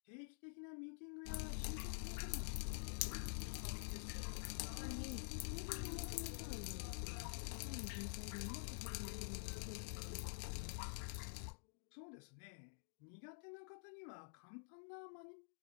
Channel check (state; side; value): silent; right; digital silence